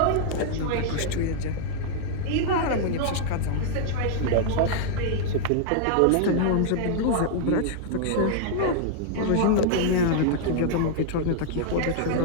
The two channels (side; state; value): both; different; correlation -0.01